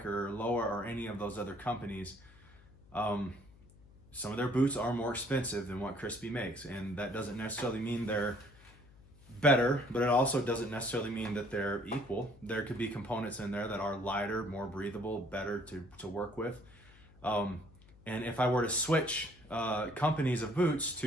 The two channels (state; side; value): noise; left; hum, 24 dB below the sound